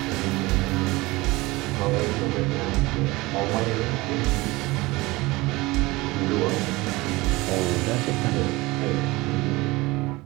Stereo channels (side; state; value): left; quieter; 21.6 dB